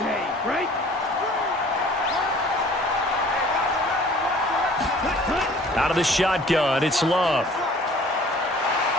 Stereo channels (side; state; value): both; normal; correlation 0.50